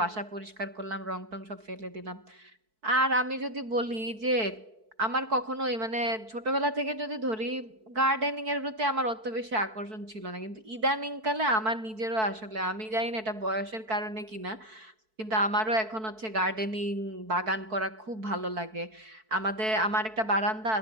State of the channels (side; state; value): left; late; 4.6 ms